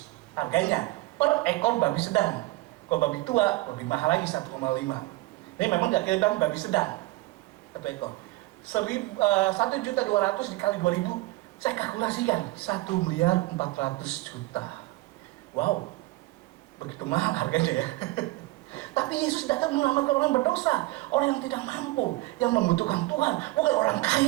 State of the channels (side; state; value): left; quieter; 19.7 dB